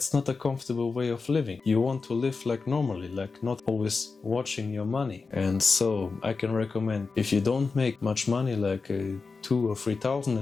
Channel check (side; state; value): right; quieter; 4.4 dB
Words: not a comfortable way of living. You want to live like normally, like not always watching your money. And so I can recommend, if you don't make much money, like 2,000 or 3,000